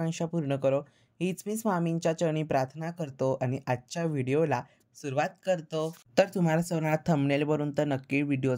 पूर्ण करो. हीच मी स्वामींच्या चरणी प्रार्थना करतो आणि आजच्या व्हिडिओला सुरुवात करतो. तर तुम्हाला सर्वांना थंबनेलवरून तर नक्की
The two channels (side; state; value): both; identical; correlation 1.00